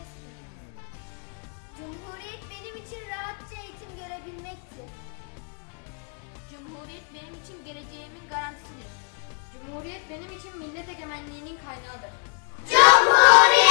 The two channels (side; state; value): right; quieter; 39.5 dB